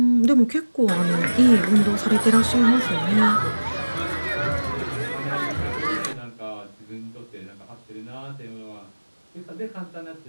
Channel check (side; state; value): both; inverted; correlation -1.00